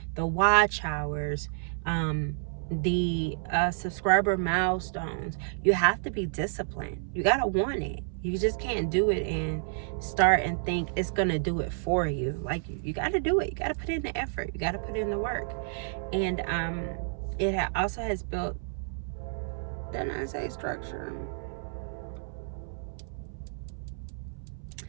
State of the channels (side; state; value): left; silent; 58 dB below the other